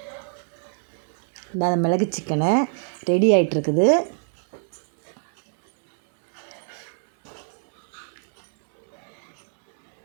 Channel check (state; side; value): silent; left; digital silence